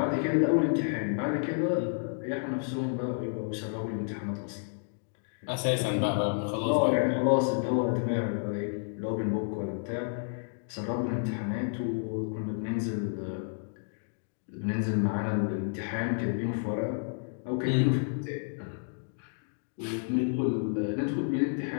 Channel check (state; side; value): silent; right; digital silence